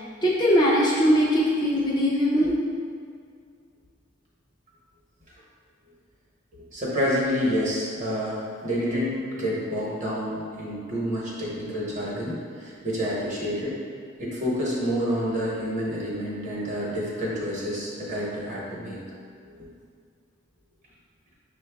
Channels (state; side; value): normal; both; correlation 0.53